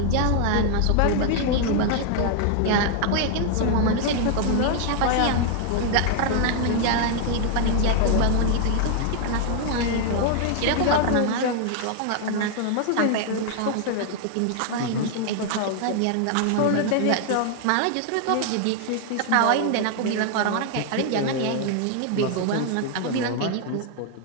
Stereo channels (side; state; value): both; different; correlation 0.00